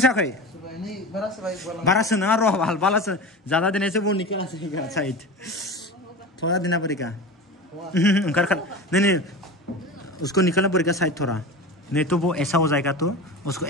सायाखै बारासो नङा र' बालासो ज्यादा देने से वो निकला से साइड थोड़ा देना पड़ेगा नहीं उसको निकालना पड़ेगा साइड थोड़ा नहीं तो वो ऐसा हो जाएगा तो उसको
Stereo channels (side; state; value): both; normal; correlation 0.30